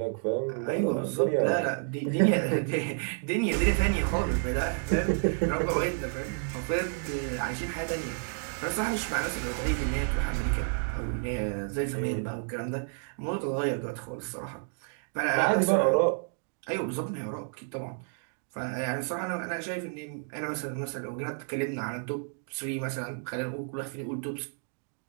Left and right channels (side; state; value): left; silent; 58 dB below the other